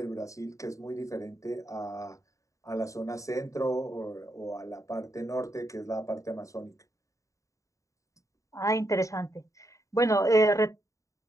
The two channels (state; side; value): late; right; 0.16 ms